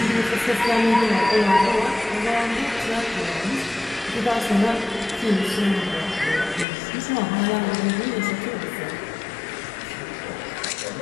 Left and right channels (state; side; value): drops out; right; at 6.7 s